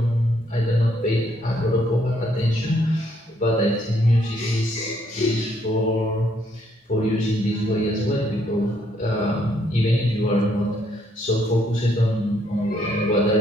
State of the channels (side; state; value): both; normal; correlation 0.71